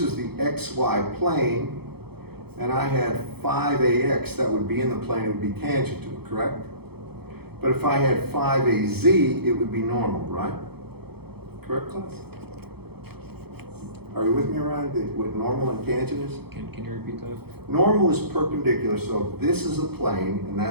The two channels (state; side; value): late; left; 0.97 ms